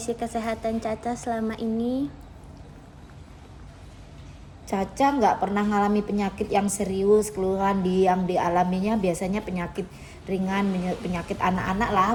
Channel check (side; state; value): both; identical; correlation 1.00